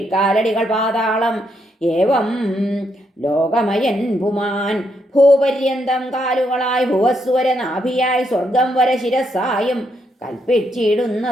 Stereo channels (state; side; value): normal; both; correlation 0.77